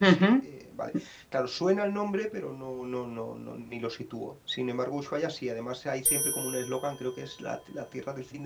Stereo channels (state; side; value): identical; both; correlation 1.00